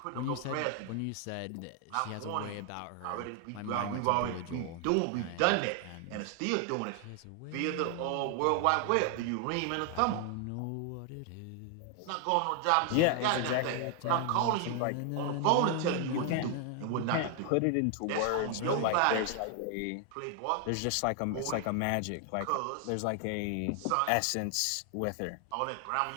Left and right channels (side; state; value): both; different; correlation 0.00